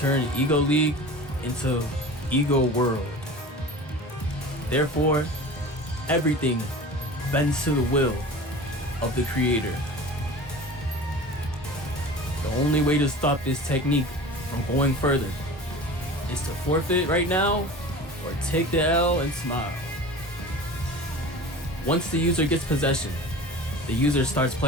Ego League into Ego World. Therefore, everything bends to the will of the creator. The only way to stop this technique from going further is to forfeit right now or take the L and smile. Once the user gets possession, the user starts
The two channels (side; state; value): both; normal; correlation 0.37